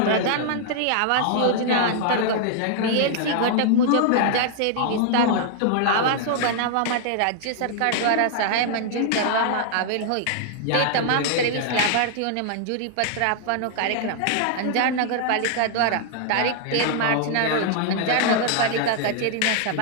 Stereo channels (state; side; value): different; both; correlation -0.01